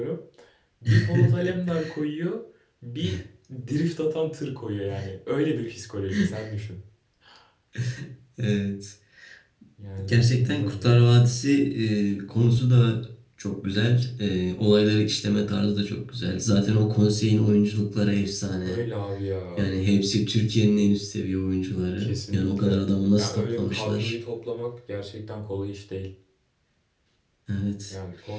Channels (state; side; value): identical; both; correlation 1.00